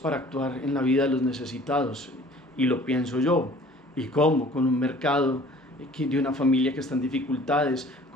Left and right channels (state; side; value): normal; both; correlation 0.50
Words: actuar en la vida de los necesitados, y lo pienso yo. ¿Y cómo? Con un mercado de una familia que está en dificultades,